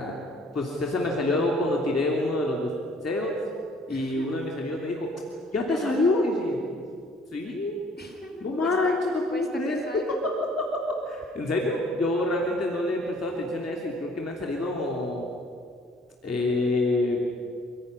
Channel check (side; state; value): both; normal; correlation 0.57